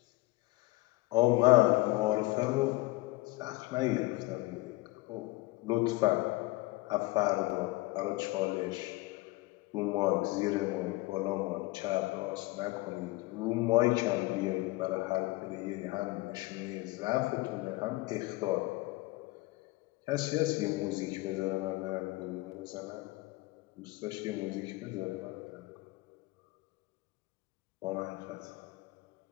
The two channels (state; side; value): quieter; right; 21.1 dB